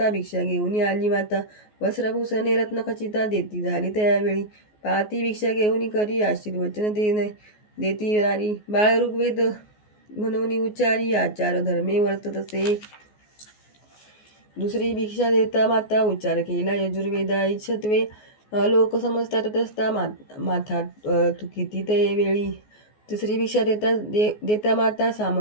भिक्षा घेऊन आली माता वस्त्रभूषणे रत्नखचिता देती झाली त्यावेळी पाहती भिक्षा घेऊन करी आशीर्वचन देती नारी बाळ ऋग्वेद म्हणून उच्चारी आचार धर्मे वर्ततसे दुसरी भिक्षा देता माता उच्चार केला यजुर्वेदा इच्छत्वे लोक समजतात तस्ता माथा तुकिती ते वेळी तिसरी भिक्षा देता माता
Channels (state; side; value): late; right; 14 ms